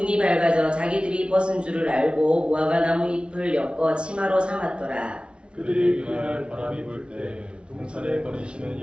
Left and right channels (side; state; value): left; late; 0.058 ms